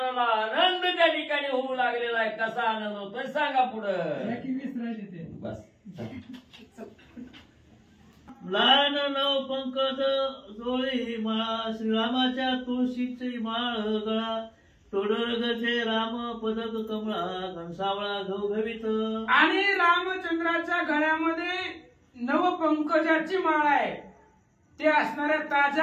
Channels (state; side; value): identical; both; correlation 1.00